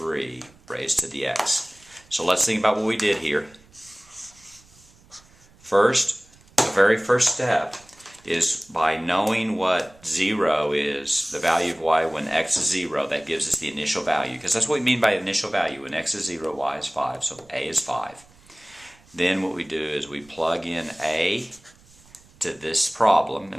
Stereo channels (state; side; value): noise; right; rumble, 28 dB below the sound